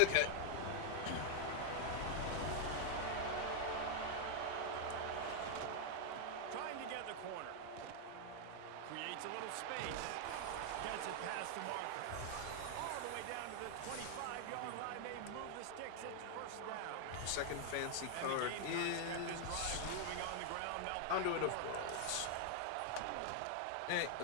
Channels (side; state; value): both; different; correlation 0.00